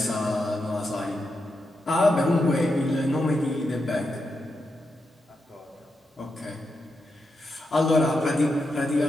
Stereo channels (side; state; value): both; normal; correlation 0.86